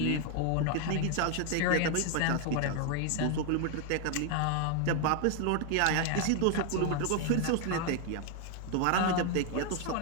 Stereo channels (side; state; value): both; different; correlation 0.00